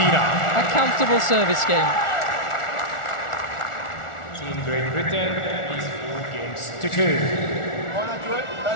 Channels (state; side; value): late; right; 1.4 ms